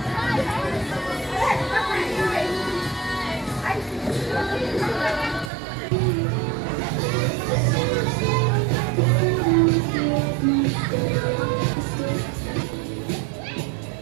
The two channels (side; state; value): left; drops out; at 5.5 s